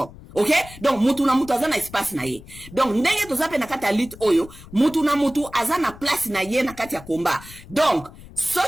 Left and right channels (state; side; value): noise; left; rumble, 18 dB below the sound